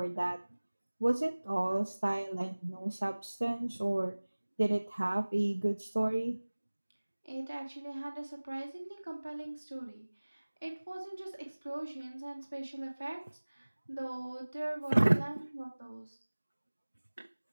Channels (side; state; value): both; inverted; correlation -1.00